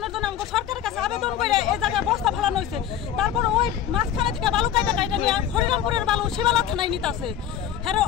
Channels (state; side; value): quieter; right; 9.9 dB